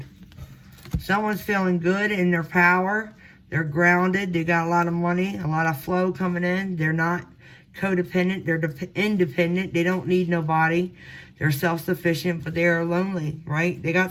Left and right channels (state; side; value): identical; both; correlation 1.00